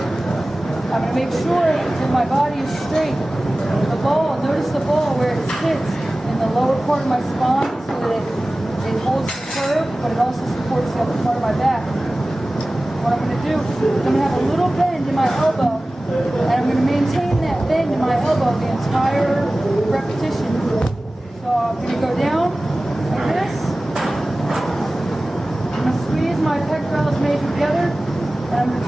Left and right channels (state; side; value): normal; both; correlation 0.97